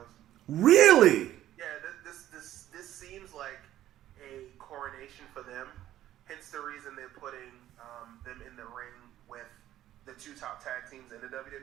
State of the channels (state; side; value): quieter; left; 13.1 dB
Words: Really? Yeah, this seems like a coronation for them. Hence the reason they're putting them in the ring with the two top tag teams in the